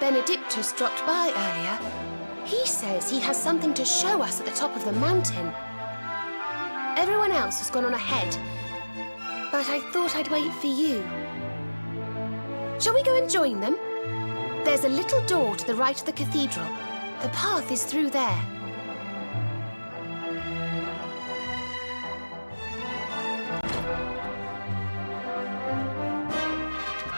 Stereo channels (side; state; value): both; inverted; correlation -1.00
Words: dropped by earlier. He says he has something to show us at the top of the mountain. Everyone else has gone on ahead, but I thought I'd wait for you. Shall we go and join them? There's a little door to the right of the cathedral. The path is through there.